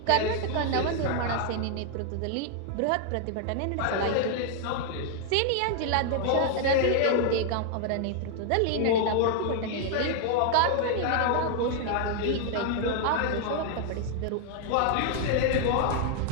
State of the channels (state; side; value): different; both; correlation 0.00